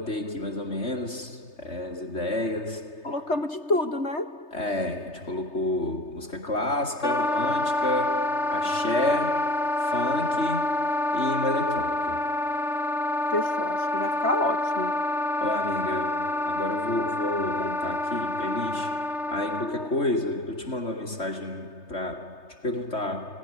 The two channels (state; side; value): late; right; 3.3 ms